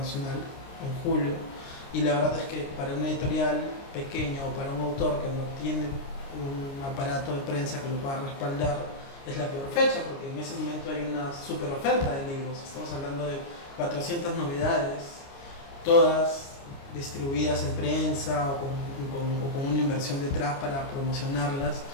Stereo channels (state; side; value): late; right; 29 ms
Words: en julio, y la verdad es que para una editorial pequeña o para un autor que no tiene un aparato de prensa que lo pueda respaldar, es la peor fecha, porque en ese momento hay una super oferta de libros. Estamos hablando de 400 novedades, todas distribuidas en prensa o con una inversión detrás para promocionarlas.